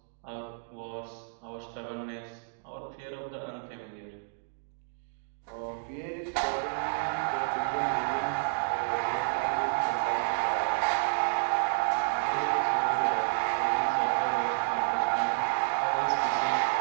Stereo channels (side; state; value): left; silent; digital silence